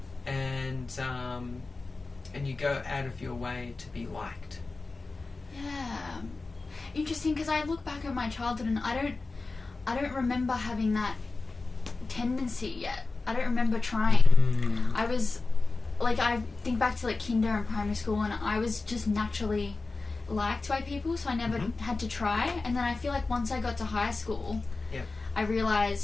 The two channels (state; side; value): quieter; right; 3.7 dB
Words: And you go out of your way to be liked. Yeah. Interesting, because I look back at my childhood and I don't remember having that tendency yet. I don't remember trying. I was I think back to kinder and primary school, and I was just naturally liked by people, so I never had to try. And then I feel like once I got to high school, I